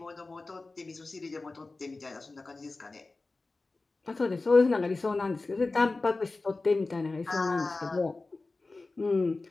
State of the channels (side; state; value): right; quieter; 3.5 dB